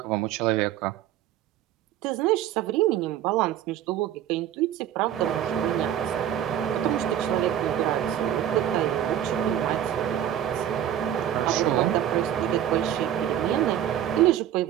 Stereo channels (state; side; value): quieter; left; 10.8 dB